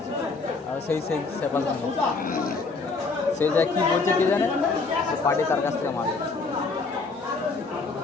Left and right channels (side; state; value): right; quieter; 4.1 dB